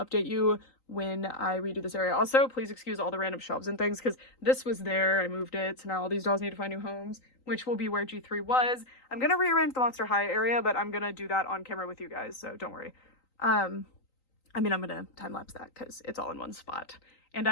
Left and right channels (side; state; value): right; late; 3.9 ms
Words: you when I redo this area. Also, please excuse all the random shelves and things, because this was there, I moved it, so now all these dolls need to find new homes, which will be where G3 was. I'm gonna rearrange the Monster High area, but I'm gonna do that on camera with you guys, so don't worry. I mean, I'm gonna time lapse that because it's all in one spot, and